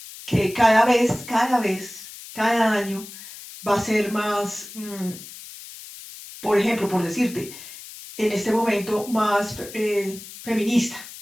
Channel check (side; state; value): left; noise; hiss, 15 dB below the sound